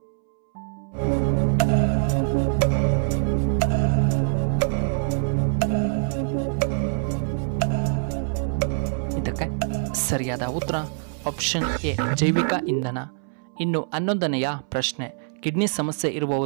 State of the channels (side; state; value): left; silent; 62 dB below the other